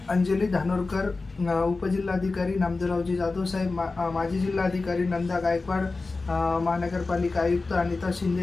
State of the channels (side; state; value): right; quieter; 3.7 dB